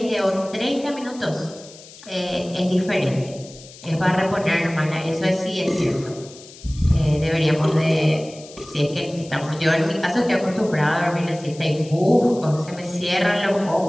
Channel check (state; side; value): noise; left; hiss, 19 dB below the sound